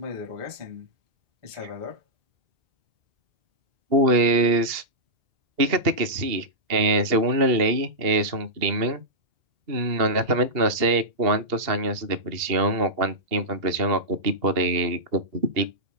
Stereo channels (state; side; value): late; left; 2.7 ms